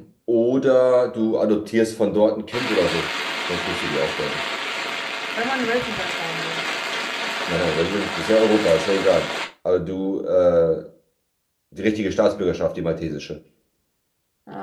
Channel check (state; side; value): identical; both; correlation 1.00